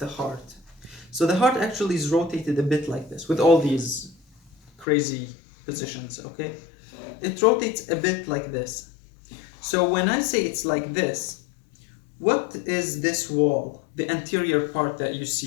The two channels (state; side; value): drops out; right; at 4.9 s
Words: heart. So the heart actually is rotated a bit like this with all these crazy positions, okay? It rotates a bit like this. So when I say it's like this, what is this wall? The anterior part that you